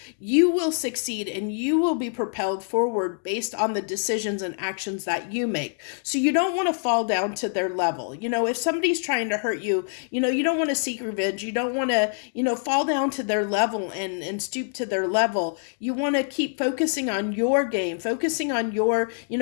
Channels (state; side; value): silent; right; digital silence